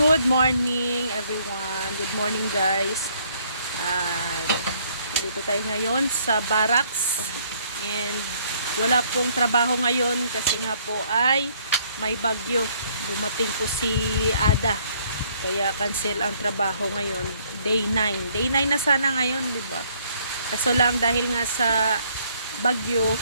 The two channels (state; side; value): inverted; both; correlation -0.65